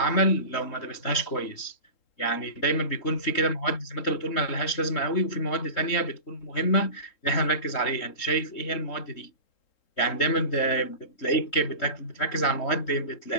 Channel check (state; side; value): late; right; 3.7 ms